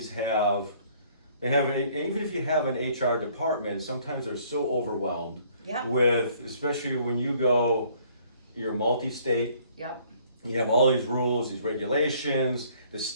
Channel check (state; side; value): inverted; both; correlation -0.61